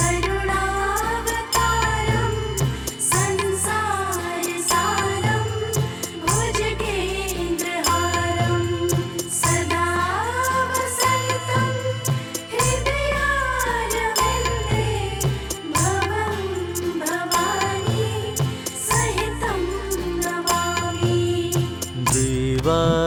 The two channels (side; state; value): both; identical; correlation 1.00